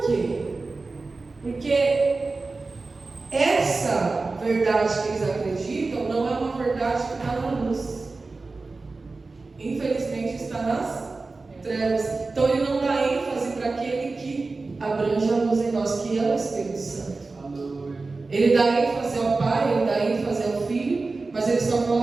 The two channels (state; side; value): quieter; left; 3.7 dB